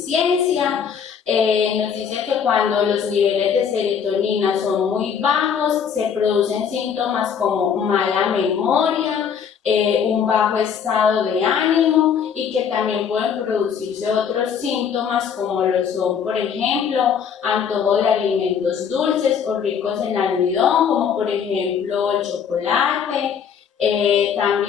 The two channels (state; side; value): quieter; right; 7.4 dB